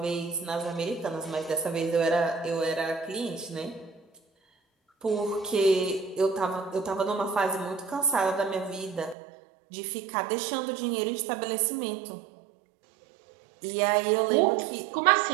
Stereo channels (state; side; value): drops out; left; at 9.2 s